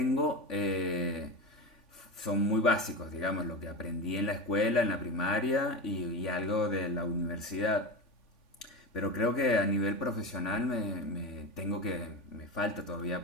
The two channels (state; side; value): late; right; 3.5 ms